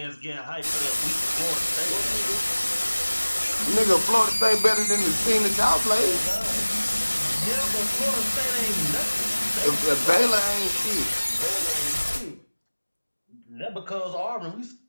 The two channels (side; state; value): both; inverted; correlation -1.00